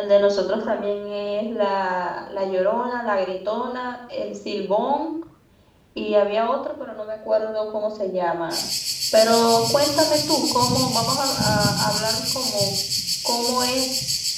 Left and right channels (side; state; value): both; identical; correlation 1.00